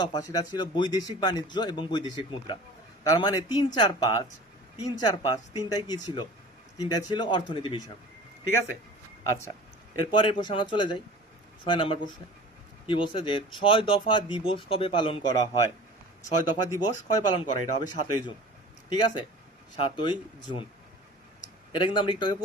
দফা সেটা ছিল বৈদেশিক বাণিজ্য এবং বৈদেশিক মুদ্রা। তার মানে 3, 4, 5 তিনটাই কি ছিল, তিনটাই ছিল অর্থনীতি বিষয়। ঠিক আছে, আচ্ছা এরপরের প্রশ্ন আমরা চলে যাই 6 নাম্বার প্রশ্নে। কি বলছে যে 6 দফা দিবস কবে পালন করা হয়? 6 দফা দিবস কবে পালন করা হয়? এটা হবে 7ই জুন। ঠিক আছে, 7ই জুন। এটা কিন্তু আমরা একটু আগে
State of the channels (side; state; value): both; normal; correlation 0.41